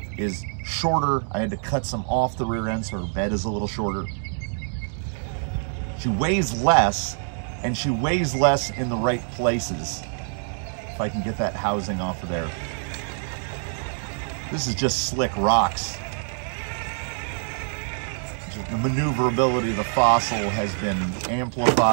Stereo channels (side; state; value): left; silent; 62 dB below the other